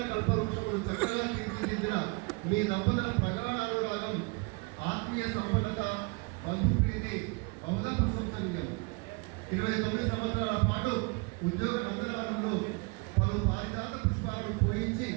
కల్పవృక్షములు చక్కగా తీర్చిదిద్దిన మీ దంపతుల ప్రగాఢ అనురాగం, ఆత్మీయ సంపన్నత, బంధుప్రీతి బహుళ ప్రశంసనీయం. 29 సంవత్సరాల పాటు ఉద్యోగ నందనవనంలో పలు పారిజాత పుష్పాలను పూజించి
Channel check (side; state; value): left; quieter; 30.1 dB